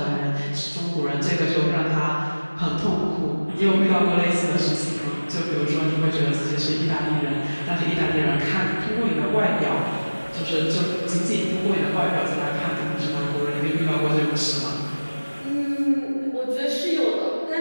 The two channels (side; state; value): both; inverted; correlation -1.00